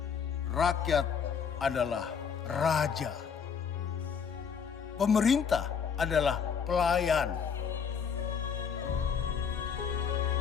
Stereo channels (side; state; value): right; quieter; 6.7 dB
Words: Rakyat adalah raja. Pemerintah adalah pelayan.